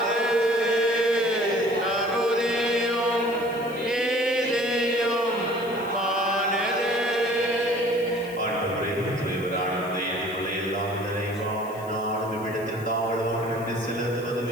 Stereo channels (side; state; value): left; noise; hiss, 21 dB below the sound